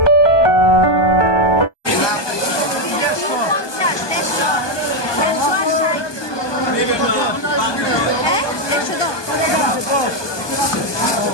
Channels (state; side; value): late; right; 1.2 ms